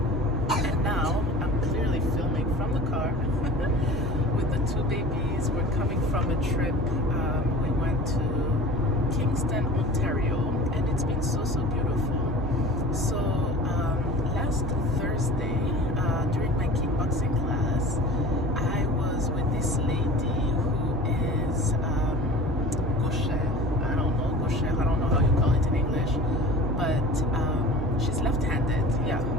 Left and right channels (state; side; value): normal; both; correlation 0.39